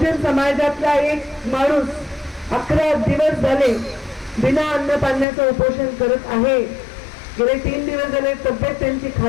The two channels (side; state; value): right; drops out; at 5.2 s